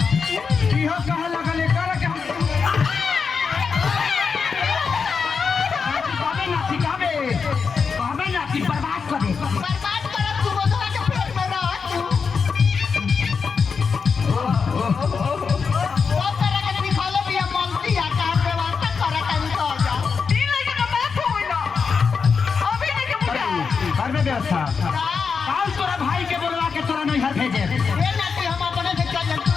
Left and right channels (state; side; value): quieter; right; 5.5 dB